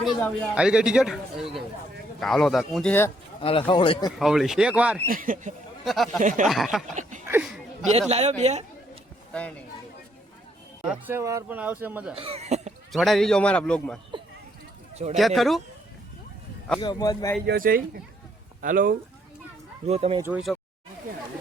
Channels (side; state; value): both; normal; correlation 0.70